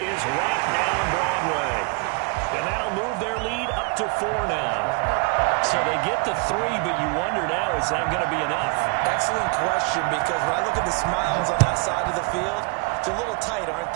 right down Broadway. And that'll move their lead up to 4 now. So they get to 3, but you wonder now, is that going to be enough? Excellent question, because when I look at the smiles on that side of the field, they're a little tight, aren't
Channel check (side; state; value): left; quieter; 32.3 dB